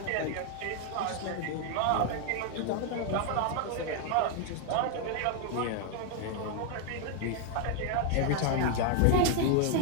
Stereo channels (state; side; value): different; both; correlation 0.00